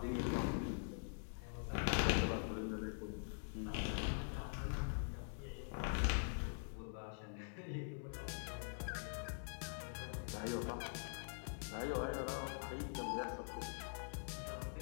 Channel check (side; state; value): right; silent; digital silence